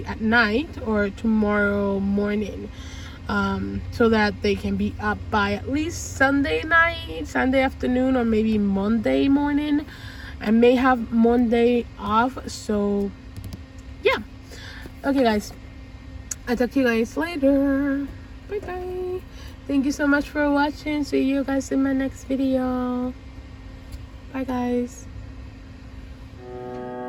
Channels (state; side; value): identical; both; correlation 1.00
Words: at night or tomorrow morning, so that they can be up by at least Sunday night, Sunday afternoon, or maybe Monday morning. I may have Monday off, so yeah. Okay guys, I'll talk to you guys later. Bye bye. Thank you so much for watching. See you guys in my next video. Bye guys.